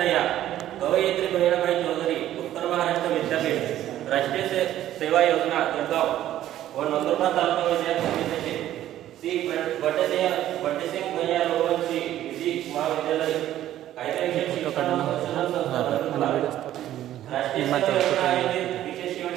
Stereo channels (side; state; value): left; quieter; 12.7 dB